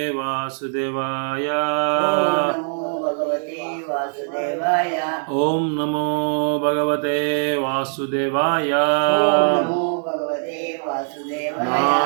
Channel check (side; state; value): left; silent; digital silence